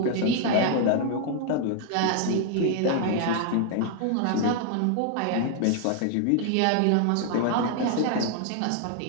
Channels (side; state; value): both; different; correlation 0.00